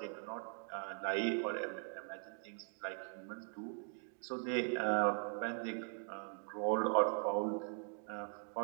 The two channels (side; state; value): left; silent; 51 dB below the other